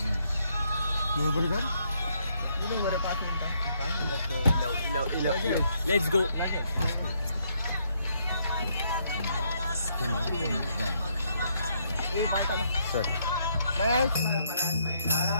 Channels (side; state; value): both; inverted; correlation -0.73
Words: बरोबर कर बरं 5 मिनिटं काय म्हणतात Let's go. Sir.